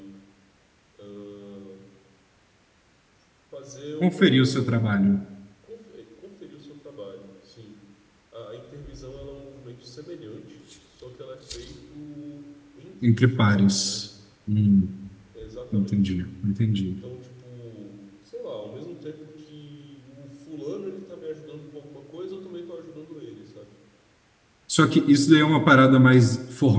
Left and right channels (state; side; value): identical; both; correlation 1.00